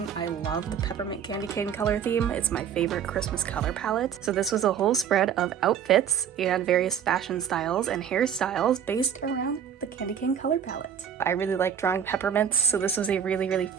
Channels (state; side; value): quieter; left; 8.4 dB